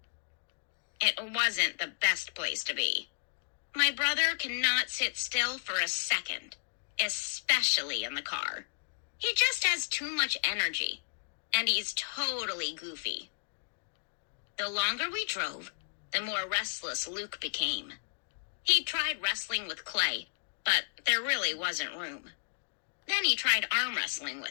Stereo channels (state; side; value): silent; right; digital silence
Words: It wasn't the best place to be. My brother cannot sit still for a second, especially in the car. He just has too much energy, and he's totally goofy. The longer we drove, the more restless Luke became. He tried wrestling with Clay, but there really wasn't room. Then he tried arm wrestling